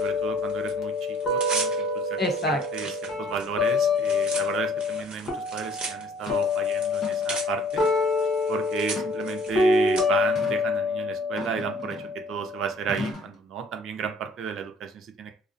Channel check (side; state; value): both; normal; correlation 0.55